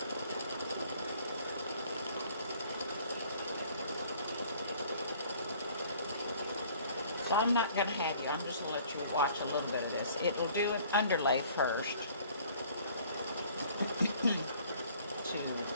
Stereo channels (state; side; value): inverted; both; correlation -0.55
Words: So I'm not going to have you, I'm just going to let you watch a little bit of this. It will do an underlay first to